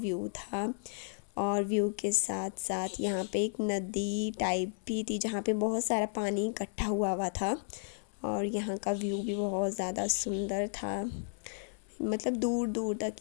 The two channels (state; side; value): silent; right; 55 dB below the other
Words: था। और व्यू के साथ साथ यहाँ पे एक नदी टाइप भी थी जहाँ पे बहुत सारा पानी इकट्ठा हुआ था। और यहाँ का व्यू भी बहुत ज़्यादा सुंदर था, मतलब दूर दूर तक